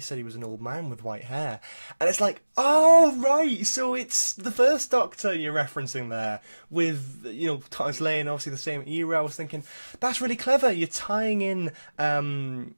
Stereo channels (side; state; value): both; inverted; correlation -1.00